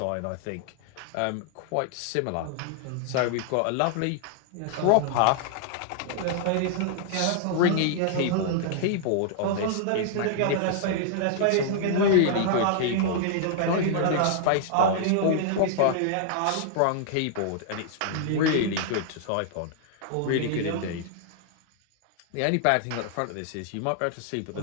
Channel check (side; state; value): both; different; correlation -0.01